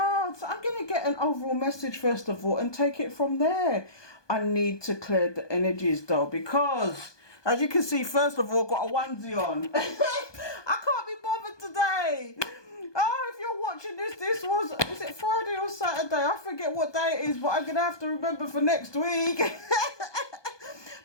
I'm going to get an overall message first of all and take it from there. I need to clear the energies though, because as you can see, first of all, got a onesie on. I can't be bothered today. Oh, if you're watching this was, is it Friday or Saturday? I forget what day it is, but I'm going to have to remember for next week.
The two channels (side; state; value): right; late; 1.2 ms